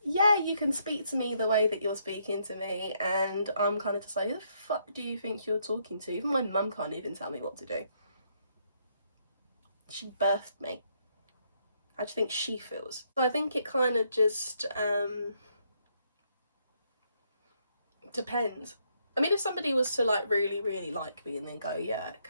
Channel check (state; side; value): inverted; both; correlation -0.73